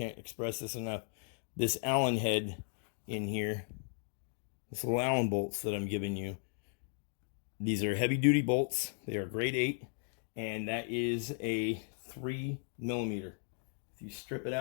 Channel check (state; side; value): silent; right; 54 dB below the other